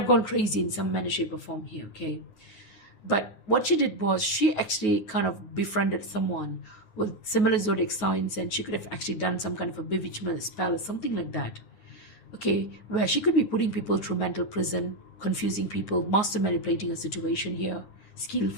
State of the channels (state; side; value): late; right; 9.4 ms